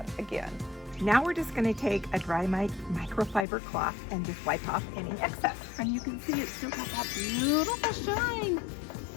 again. Now we're just going to take a dry microfiber cloth and just wipe off any excess. And you can see it still got that beautiful shine.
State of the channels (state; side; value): drops out; right; at 3.5 s